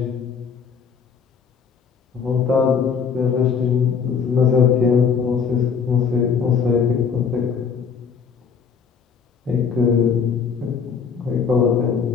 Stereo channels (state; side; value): quieter; right; 6.4 dB